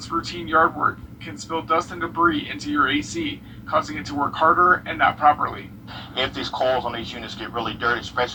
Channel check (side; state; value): both; identical; correlation 1.00